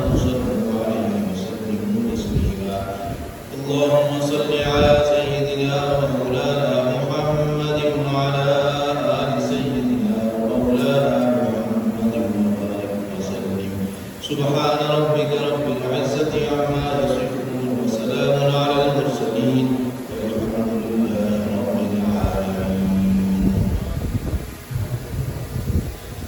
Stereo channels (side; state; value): both; identical; correlation 1.00